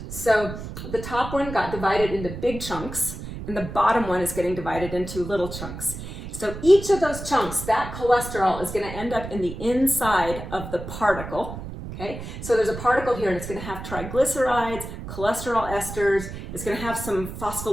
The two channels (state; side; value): noise; right; rumble, 9 dB below the sound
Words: So the top one got divided into big chunks, and the bottom one is getting divided into little chunks. So each of those chunks, that cholesterol is going to end up in the inside of the particle. Okay, so there's a particle here and it's going to have triglycerides, cholesterol esters. It's going to have some